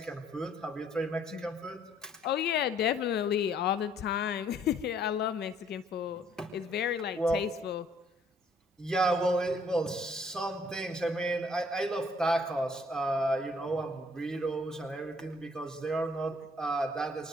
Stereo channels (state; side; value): normal; both; correlation 0.62